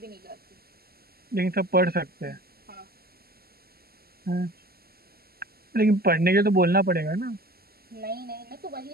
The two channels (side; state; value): left; late; 0.45 ms